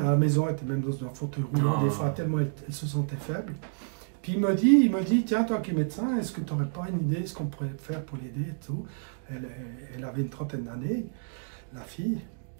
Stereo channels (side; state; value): left; silent; digital silence